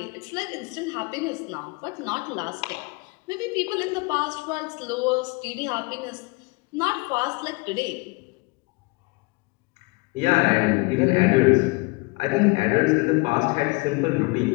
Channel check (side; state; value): right; quieter; 27.4 dB